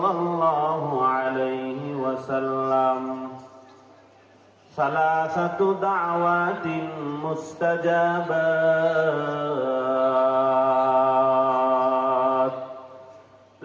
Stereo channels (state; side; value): identical; both; correlation 1.00